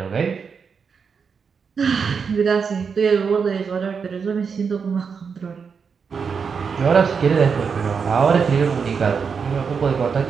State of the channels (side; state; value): left; quieter; 5.9 dB